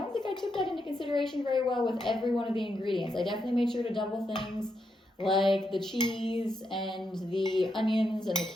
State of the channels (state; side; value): normal; both; correlation 0.82